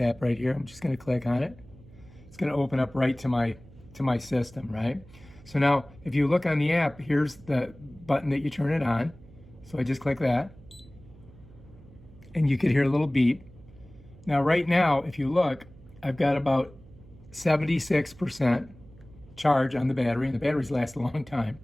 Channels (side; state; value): right; noise; hum, 22 dB below the sound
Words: right here. I'm just going to click on it. It's going to open up right to my system, right? So now if you look on the app, here's the button that you turn it on. So I just click that and you could hear a little beep. Now right now, if you look, I've got about 76% charge on the battery, and the batteries last a long time.